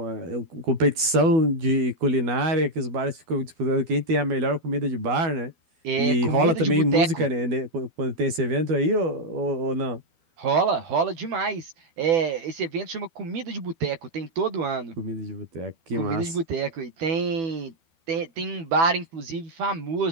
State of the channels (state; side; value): late; left; 12 ms